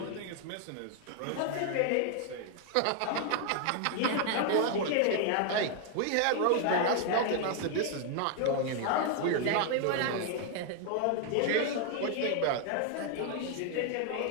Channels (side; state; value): both; different; correlation 0.00